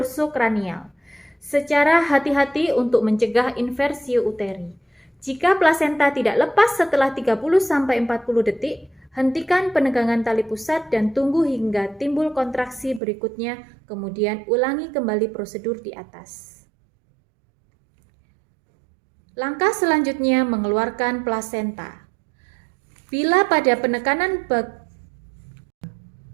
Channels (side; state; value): left; drops out; at 13.0 s